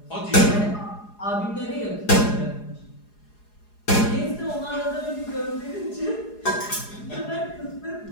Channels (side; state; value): right; late; 4.8 ms